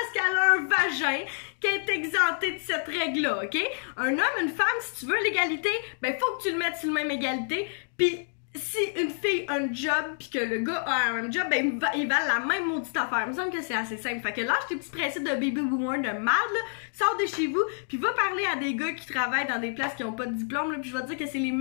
qu'elle a un vagin qu'elle est exemptée de cette règle-là, ok? Un homme, une femme, si tu veux l'égalité, ben faut que tu le mettes sur le même égalité, pis si une fille a un job pis que le gars a un même job, ben ils valent la même maudite affaire. Il me semble que c'est assez simple. Fait que lâche tes petits principes de baby boomer de merde, là, sors de chez vous, pis va parler à des gars qui travaillent dans des places qui ont pas de diplôme, là, pis je vais te dire que c'est les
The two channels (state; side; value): silent; right; digital silence